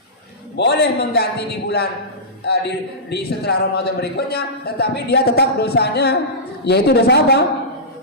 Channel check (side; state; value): both; normal; correlation -0.17